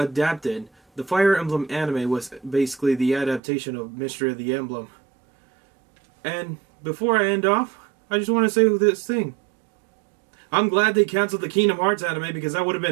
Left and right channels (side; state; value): left; drops out; at 3.4 s